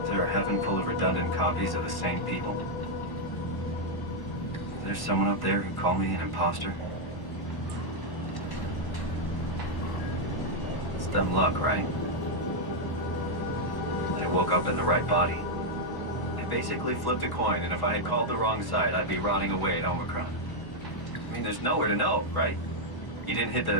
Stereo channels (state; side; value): late; right; 1.1 ms